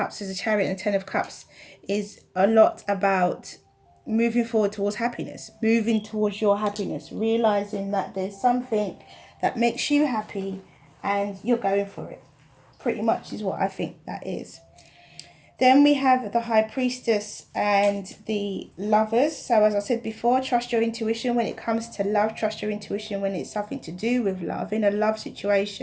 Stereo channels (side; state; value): both; identical; correlation 1.00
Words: As a Chariot and 10 of Cups is a lot about moving forward towards happiness, moving towards your happiness, realizing that there's something that makes you happy and you're going for it. Pretty much is what I think that is. Then we have the High Priestess and the Lovers. So as I said before, trust your intuition when it comes to love. Trust your intuition when it's something to do with love. In a love